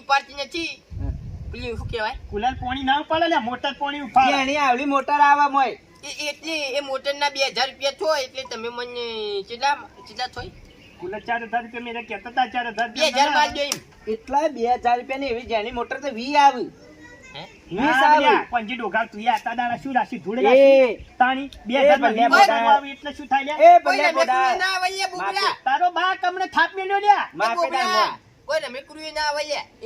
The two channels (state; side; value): identical; both; correlation 1.00